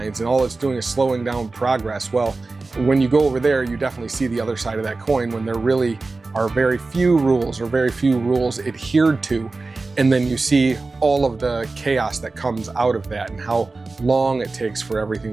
and all it's doing is slowing down progress. Well, when you go over there, you definitely see the other side of that coin, when there really are very few rules adhered to. And then you see all of the chaos that comes out of that and how long it takes for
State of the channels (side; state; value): left; quieter; 3.6 dB